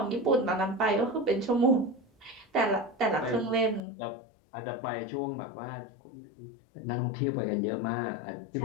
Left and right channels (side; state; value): right; drops out; at 3.8 s